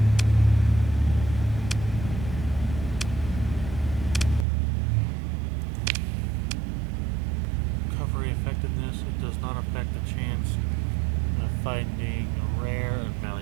Recovery effectiveness. It does not affect the chance of finding rare and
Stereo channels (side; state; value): left; drops out; at 4.5 s